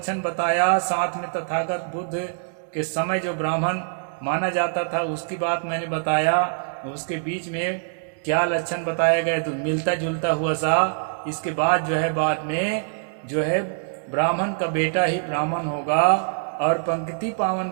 बताया, साथ में तथागत बुद्ध के समय जो ब्राह्मण माना जाता था उसकी बात मैंने बताया। उसके बीच में क्या लक्षण बताए गए तो मिलता जुलता हुआ सा। इसके बाद जो है बाद में जो है ब्राह्मण का बेटा ही ब्राह्मण होगा और पंक्ति पावन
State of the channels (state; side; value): silent; left; digital silence